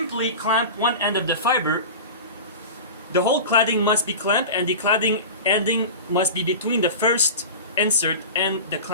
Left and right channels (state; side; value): inverted; both; correlation -0.31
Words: clamp one end of the fiber. The whole cladding must be clamped, and the cladding ending must be between the first insert and the